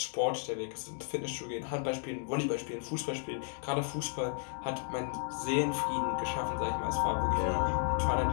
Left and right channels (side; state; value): right; silent; 55 dB below the other